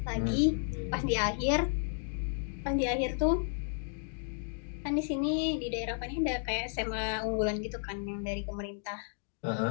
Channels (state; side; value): silent; right; digital silence